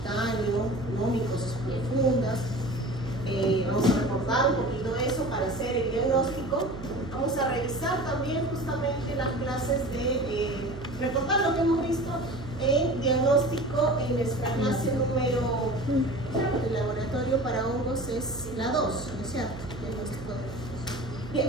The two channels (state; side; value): noise; right; hum, 13 dB below the sound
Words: ¿no?, micosas profundas. Vamos a recordar un poquito eso para hacer el diagnóstico. Vamos a revisar también justamente las clases de recordar lo que hemos visto en diagnóstico en nuestra clase número el laboratorio para hongos es la 2, ¿no es cierto? Diagnóstico de hongos.